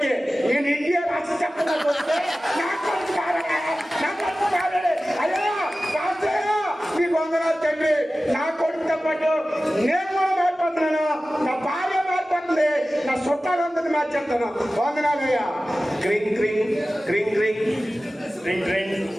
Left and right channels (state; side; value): normal; both; correlation 0.96